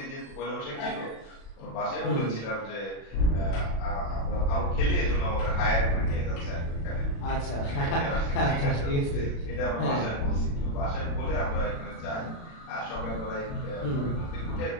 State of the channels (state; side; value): late; right; 36 ms